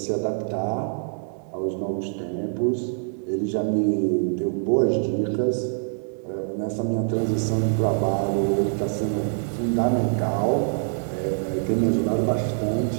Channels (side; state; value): left; silent; 62 dB below the other